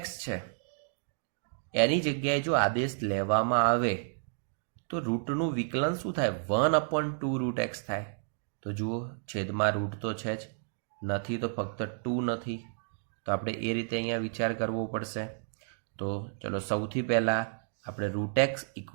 છે એની જગ્યાએ જો આદેશ લેવામાં આવે તો રૂટનું વિકલન શું થાય? 1/2 √x થાય. તો જુઓ, છેદમાં રૂટ તો છે જ, નથી તો ફક્ત 2 નથી. તો આપણે એ રીતે અહીંયા વિચાર કરવો પડશે. તો ચલો સૌથી પહેલાં આપણે √x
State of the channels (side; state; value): left; silent; digital silence